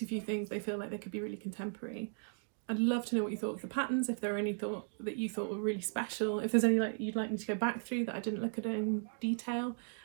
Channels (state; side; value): silent; left; digital silence